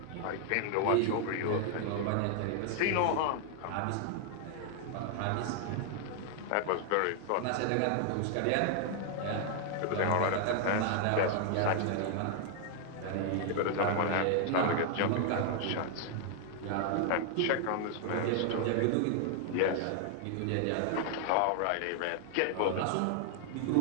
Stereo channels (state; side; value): different; both; correlation 0.00